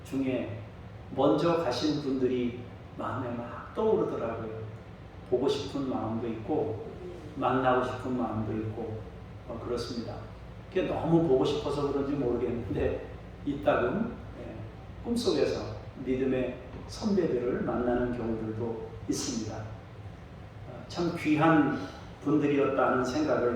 중에 먼저 가신 분들이 마음에 막 떠오르더라고요. 보고 싶은 마음도 있고 만나고 싶은 마음도 있고 그렇습니다. 그게 너무 보고 싶어서 그런지 모르겠는데 이따금 꿈속에서 믿음의 선배들을 만나는 경우들도 있습니다. 참 귀한 분들이었다는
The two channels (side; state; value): both; identical; correlation 1.00